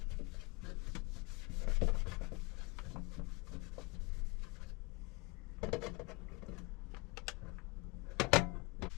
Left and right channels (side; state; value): right; quieter; 27.6 dB